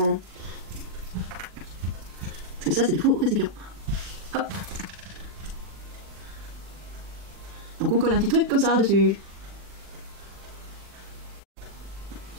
Parce que ça c'est des faux récipients. Hop. Donc on colle un petit truc comme ça dessus.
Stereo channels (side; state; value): left; late; 40 ms